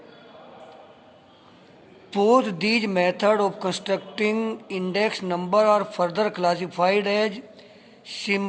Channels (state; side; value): identical; both; correlation 1.00